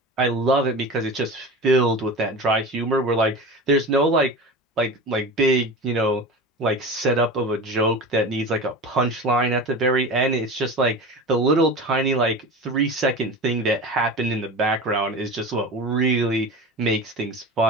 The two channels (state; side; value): normal; both; correlation 0.31